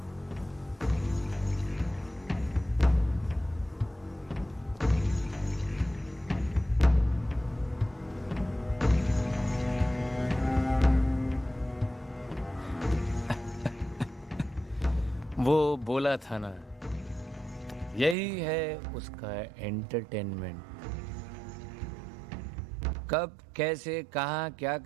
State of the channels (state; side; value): drops out; left; at 18.2 s